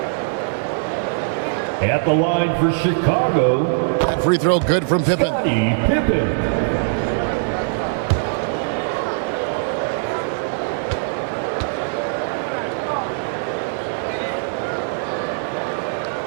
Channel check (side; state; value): left; silent; 65 dB below the other